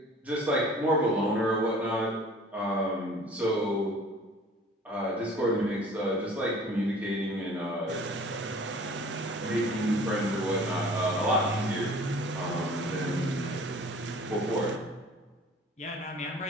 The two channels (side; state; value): both; normal; correlation 0.48